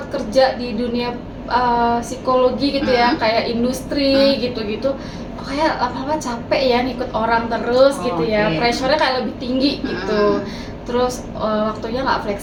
kerja di dunia psikologi gitu ya, kayak industri gitu-gitu. Kayak lama-lama capek ya ngikut orang terus gitu ya. Oke. Pressure-nya kayak lebih tinggi gitu. Terus waktunya nggak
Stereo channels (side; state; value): both; identical; correlation 1.00